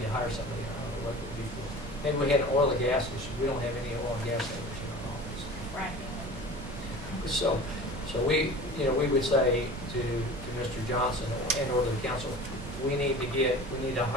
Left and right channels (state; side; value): noise; right; rumble, 11 dB below the sound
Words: to hire somebody. I don't know what it would be for. Maybe we had an oil and gas issue. We don't have any oil and gas owners in our office. Right. So we would say to Mr. Johnson and or the council, we need to